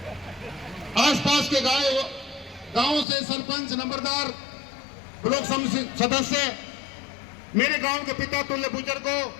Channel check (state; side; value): drops out; right; at 3.1 s